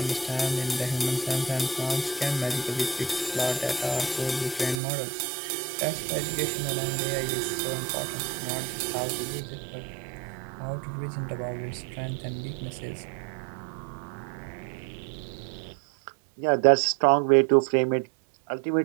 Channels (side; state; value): left; drops out; at 4.8 s